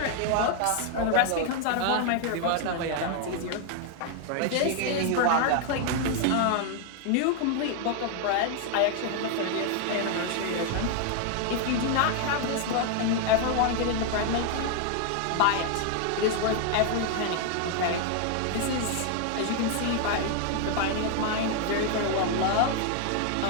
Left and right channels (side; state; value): both; different; correlation 0.00